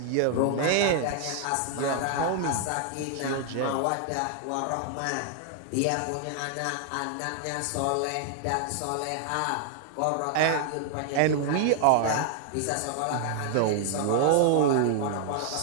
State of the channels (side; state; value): both; different; correlation 0.00